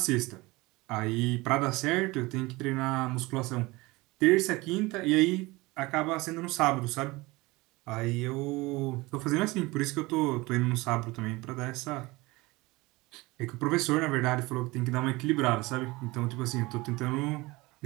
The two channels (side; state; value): left; quieter; 22.2 dB